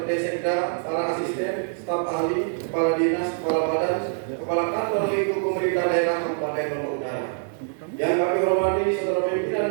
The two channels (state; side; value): silent; left; digital silence